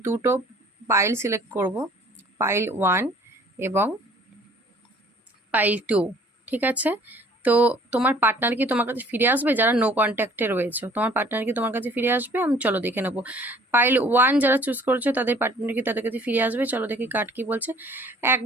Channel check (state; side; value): normal; both; correlation 0.54